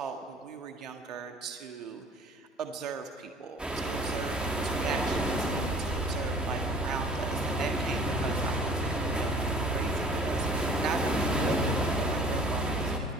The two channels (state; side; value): normal; both; correlation 0.50